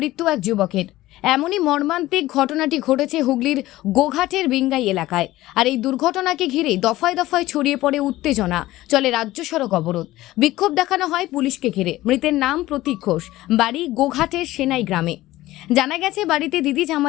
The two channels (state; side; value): quieter; right; 16.7 dB